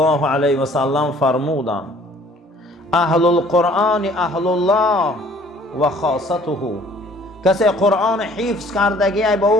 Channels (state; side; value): normal; both; correlation 0.56